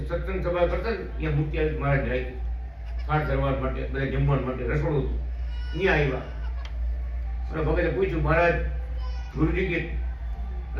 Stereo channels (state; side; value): identical; both; correlation 1.00